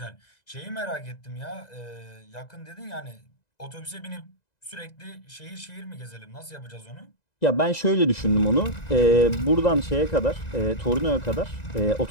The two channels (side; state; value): right; late; 2.0 ms